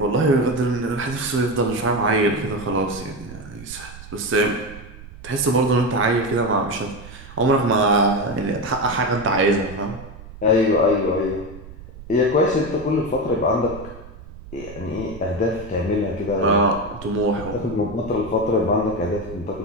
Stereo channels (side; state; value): right; noise; rumble, 16 dB below the sound